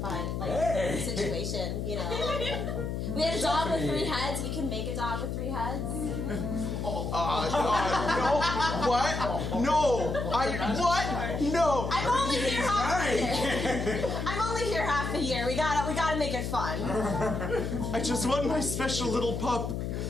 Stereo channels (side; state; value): left; noise; hum, 3 dB below the sound